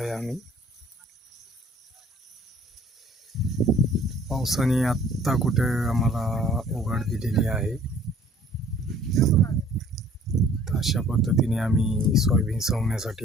आम्ही. पावसाने आत्ता कुठे आम्हाला उघड दिलेली आहे. तर अशा पद्धतीने आम्ही सोयाबीन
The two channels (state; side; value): normal; both; correlation 0.55